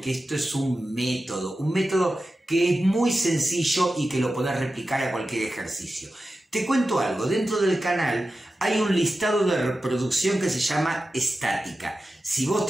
esto es un método que es muy sencillo y que lo podés replicar a cualquier ejercicio. Te cuento algo, dentro del canal hay un listado de reproducción que se llama estática. Si vos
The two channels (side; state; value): both; normal; correlation 0.93